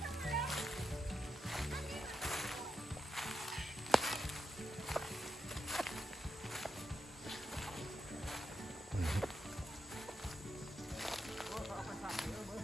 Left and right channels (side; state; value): both; normal; correlation 0.86